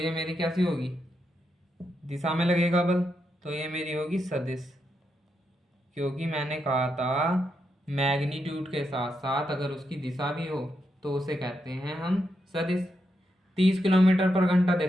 मेरी कैसी होगी? दिशा में लगेगा बल, तो ये मेरी होगी सदिश। क्योंकि मैंने कहा था मैग्नीट्यूड के साथ साथ अगर उसकी दिशा भी हो तो उसे कहते हैं हम सदिश। 30 किलोमीटर पर घंटा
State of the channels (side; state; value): both; normal; correlation 0.83